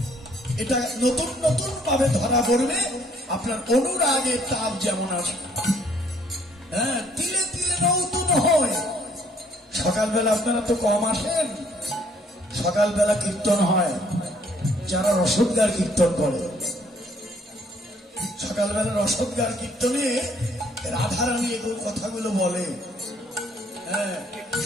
এটা নতুন নতুন ভাবে ধরা পড়বে। আপনার অনুরাগের তাপ যেমন আছে, হ্যাঁ, তিলে তিলে নতুন হয়। সকালবেলা আপনারা তো কম আসেন, সকালবেলা কীর্তন হয়, যারা রসদগার কীর্তন করে, সকালবেলা রসদগার কীর্তনে রাধারানী এগুলো কথাগুলো বলে। হ্যাঁ,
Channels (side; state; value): both; normal; correlation 0.63